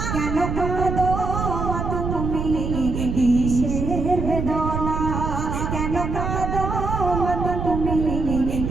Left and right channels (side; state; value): right; noise; rumble, 3 dB below the sound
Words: কেন কাঁদো মা তুমি কিসের বেদনা, কেন কাঁদো মা তুমি